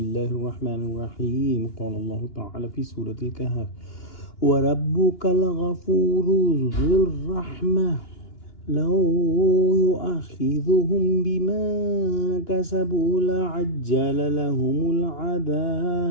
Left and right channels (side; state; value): right; late; 2.9 ms